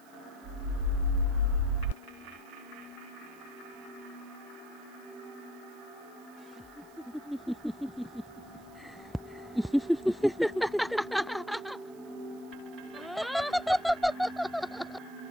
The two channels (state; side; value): noise; right; hiss, 27 dB below the sound